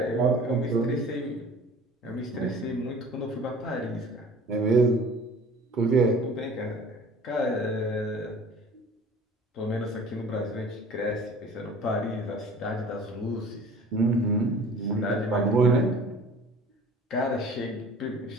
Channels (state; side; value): normal; both; correlation 0.46